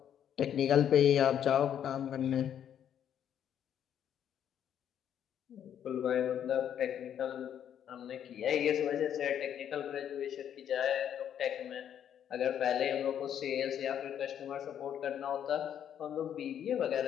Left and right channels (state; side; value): quieter; right; 9.5 dB